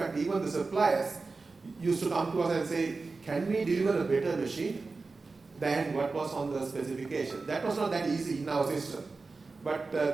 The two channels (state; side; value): quieter; left; 4.0 dB